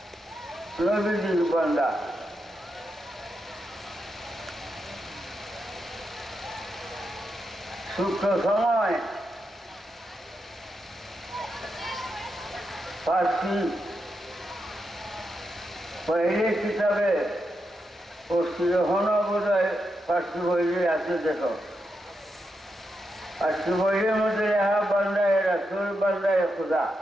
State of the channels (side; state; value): both; normal; correlation 0.85